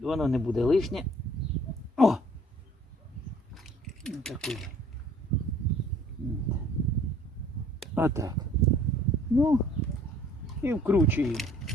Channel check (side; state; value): both; normal; correlation 0.56